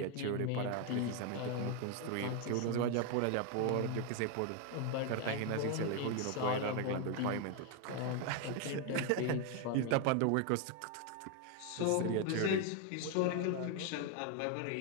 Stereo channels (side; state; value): both; different; correlation 0.01